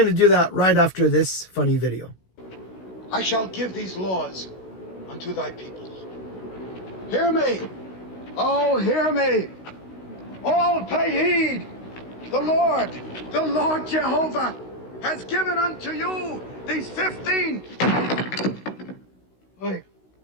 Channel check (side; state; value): right; late; 16 ms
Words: to do that right after this funny video. I shall give these laws unto thy people. Hear me. Oh, hear me. All pay heed. The Lord Jehovah has given unto you these 10